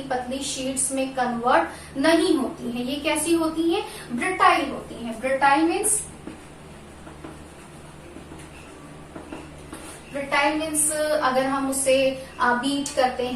पतली शीट्स में कन्वर्ट नहीं होती हैं। ये कैसी होती हैं? ब्रिटाइल होती हैं। ब्रिटाइल मीन्स ब्रिटाइल मीन्स अगर हम उसे बीट करते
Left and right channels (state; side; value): identical; both; correlation 1.00